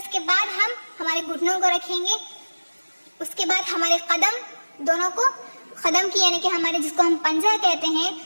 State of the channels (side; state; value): both; inverted; correlation -1.00